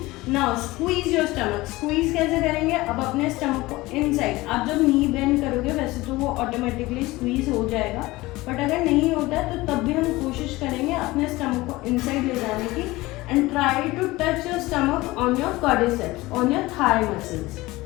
Now squeeze your stomach. Squeeze कैसे करेंगे, अब अपने stomach को inside, आप जब knee bend करोगे वैसे तो वो automatically squeeze हो जाएगा, बट अगर नहीं होता है तो तब भी हम कोशिश करेंगे अपने stomach को inside ले जाने की, and try to touch your stomach on your quadriceps, on your thigh muscles,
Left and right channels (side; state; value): right; quieter; 19.9 dB